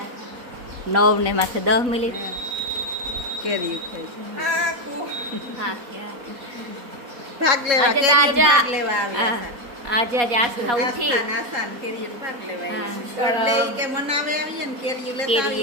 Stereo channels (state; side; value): late; left; 4.1 ms